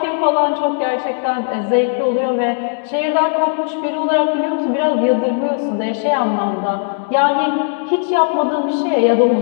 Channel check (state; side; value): silent; right; 65 dB below the other